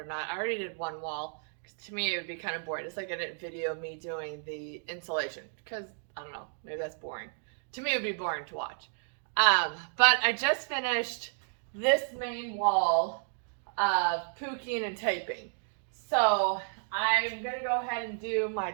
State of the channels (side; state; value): left; silent; digital silence